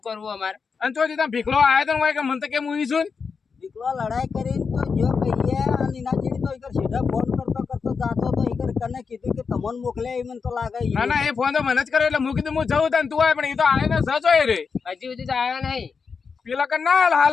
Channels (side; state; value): right; quieter; 5.4 dB